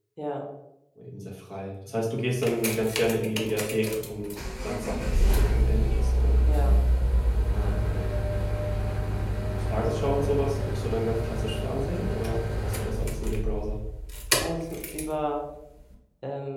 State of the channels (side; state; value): both; identical; correlation 1.00